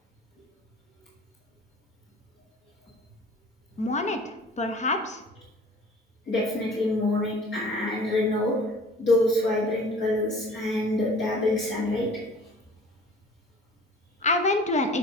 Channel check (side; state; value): both; normal; correlation 0.47